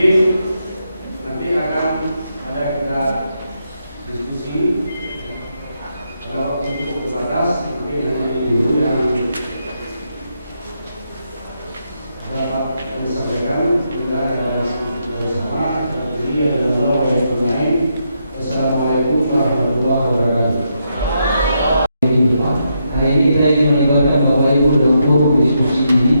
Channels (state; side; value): inverted; both; correlation -0.81